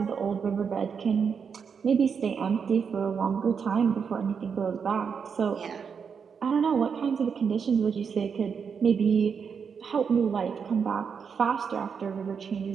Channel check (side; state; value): left; quieter; 6.4 dB